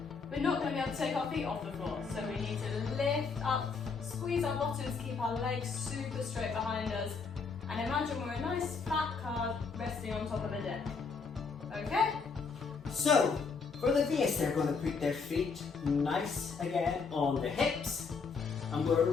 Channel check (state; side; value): quieter; right; 5.0 dB